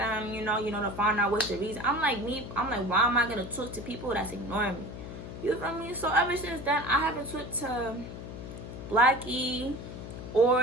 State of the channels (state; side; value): noise; left; hum, 10 dB below the sound